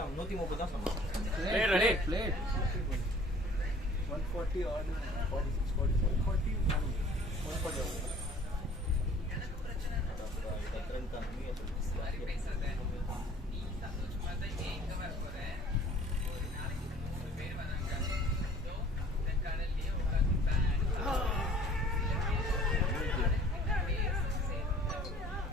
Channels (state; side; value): normal; both; correlation 0.52